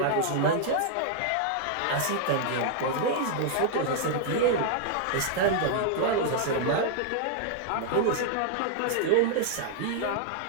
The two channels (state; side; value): different; both; correlation -0.01